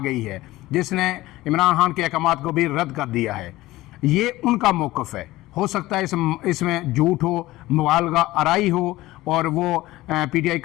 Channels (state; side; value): quieter; right; 17.6 dB